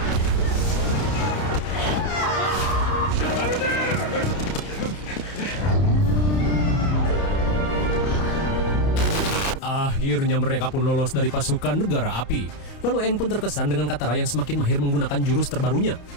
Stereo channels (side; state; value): right; late; 30 ms